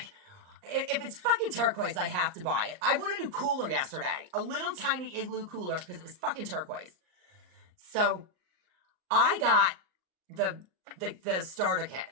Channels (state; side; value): late; left; 39 ms